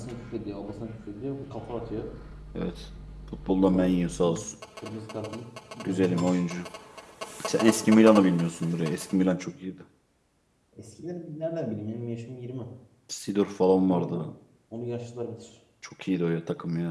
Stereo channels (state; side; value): identical; both; correlation 1.00